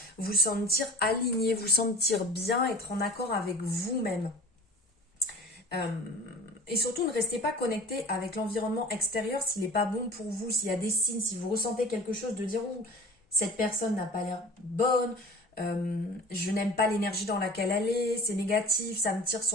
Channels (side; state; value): both; normal; correlation 0.41